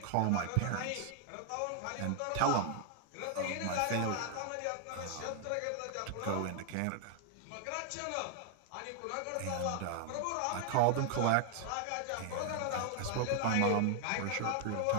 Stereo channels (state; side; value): different; both; correlation 0.00